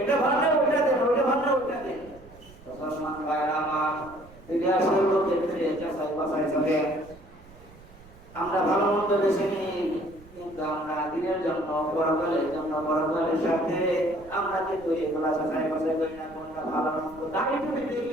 ভালো না ওটা দেন, ওটা ভালো না ওটা দেন। মুসলমান ভাইরা আমার, দুনিয়ার সর্ব ক্ষেত্রে যাচাই বাছাই চলে। আমরা ভালো মন্দ বেছে নিই, কিন্তু আমরা দিনের জন্য, পরকালের জন্য, পরকালের সাথে আমরা কিন্তু এগুলা যাচাই বাছাই করি না। কোনটা ভালো মন্দ দাঁড়িয়ে টুপি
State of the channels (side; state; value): right; noise; rumble, 22 dB below the sound